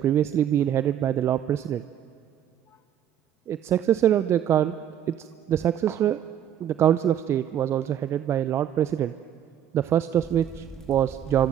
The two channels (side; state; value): left; quieter; 10.2 dB